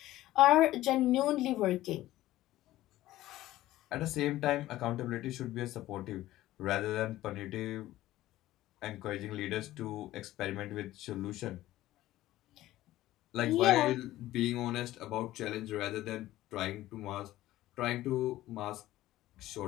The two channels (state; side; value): quieter; right; 15.5 dB